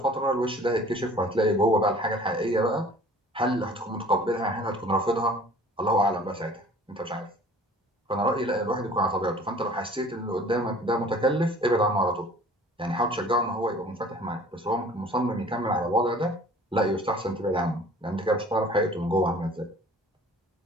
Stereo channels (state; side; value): normal; both; correlation 0.49